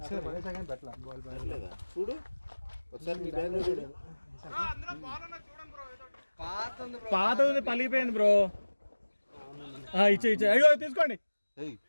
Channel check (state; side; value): inverted; both; correlation -1.00